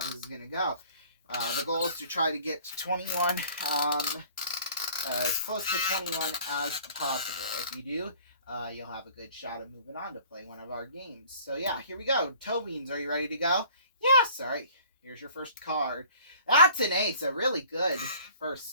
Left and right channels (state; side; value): inverted; both; correlation -0.51